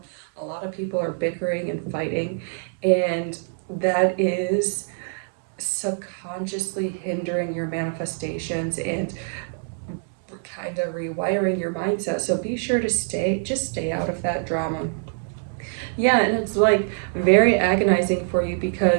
A lot of people are bickering and fighting, and that is subconsciously hindering your manifestations and kind of rewiring your mindset. So be sure to stay out of that drama. Yeah, and it's like very agonizing for you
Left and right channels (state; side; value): silent; left; digital silence